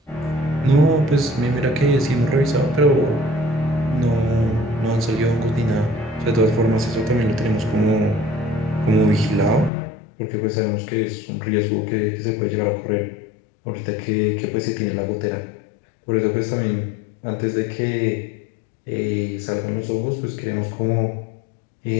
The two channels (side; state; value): right; drops out; at 9.7 s